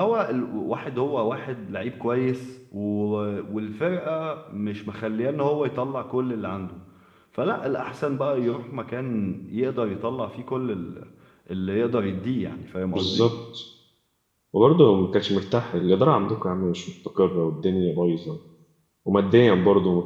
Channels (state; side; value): identical; both; correlation 1.00